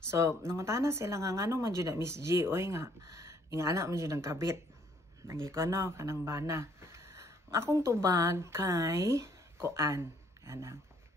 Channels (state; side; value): normal; both; correlation 0.64